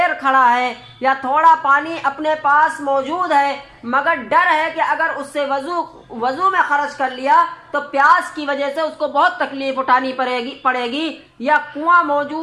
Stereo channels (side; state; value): both; identical; correlation 1.00